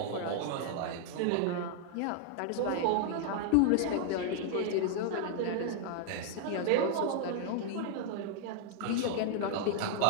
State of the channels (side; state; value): both; different; correlation 0.00